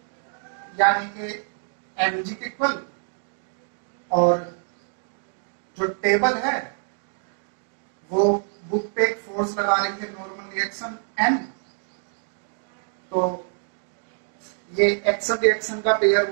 यानी कि mg के इक्वल, और जो टेबल है वो बुक पे एक फोर्स लगा रही है नॉर्मल रिएक्शन n। तो ये एक्शन रिएक्शन का पेयर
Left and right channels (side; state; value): left; silent; digital silence